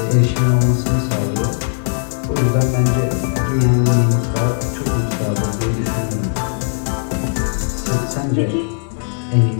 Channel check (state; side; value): silent; right; 59 dB below the other